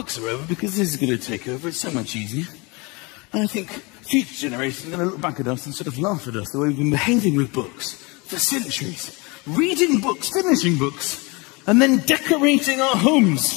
are over because this is going to take over. It's so much easier. And I think future generations are going to look back at us and sort of laugh at us the way we've been behaving with books for centuries. Reading books, finishing books, and then decorating our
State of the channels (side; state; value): right; quieter; 27.4 dB